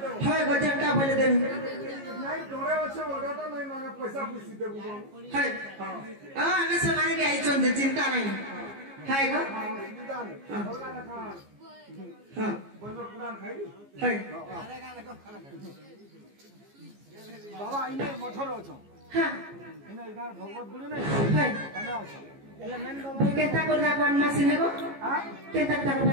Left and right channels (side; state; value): left; late; 15 ms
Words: হয় গো জনটা বলে দেমি নাই ডরে আছে ওটা নাই মাগা পয়সা পুষি দেব হয় আমি সমানে কে আইছন যে চিন্তা নাই হয় গো হ্যাঁ হয় বাবা ইনে মঠর অছ হ্যাঁ ইনে ইনার ভগবত গুরু নাই হয় এনে অছ এলে মেন বাবা কেতা করনা কোন মাসিনে গো হ্যাঁ কেতা তা